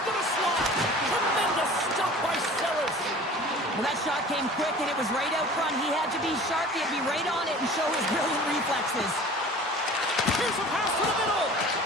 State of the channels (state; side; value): normal; both; correlation 0.43